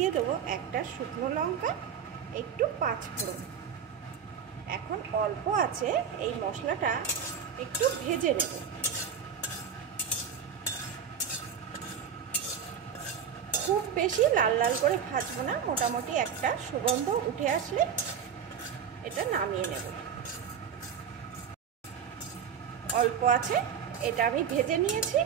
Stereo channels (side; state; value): left; quieter; 7.5 dB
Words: দেবো একটা শুকনো লঙ্কা, একটু পাঁচফোড়ন। এখন অল্প আছে এই মশলাটা একটু ভেজে নেব। খুব বেশি লাল লাল করে ভাজবো না, মোটামুটি একটা সুগন্ধ উঠে আসলে এটা নামিয়ে নেব। অল্প আছে, এটা আমি ভেজে নিয়েছি।